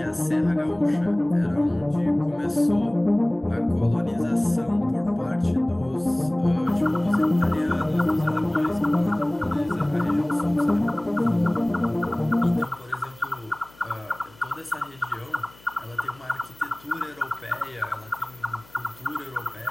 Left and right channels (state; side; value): noise; left; hum, 26 dB below the sound